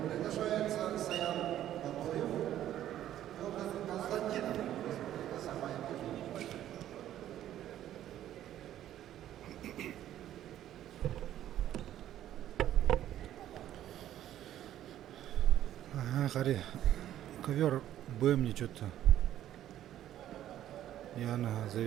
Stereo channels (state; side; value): quieter; left; 12.1 dB